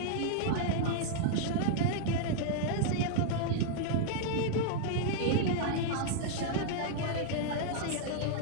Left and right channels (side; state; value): both; different; correlation -0.01